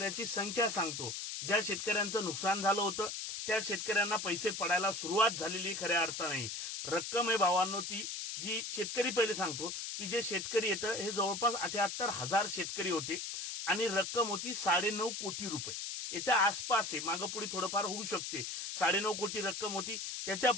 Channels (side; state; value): left; noise; hiss, 5 dB below the sound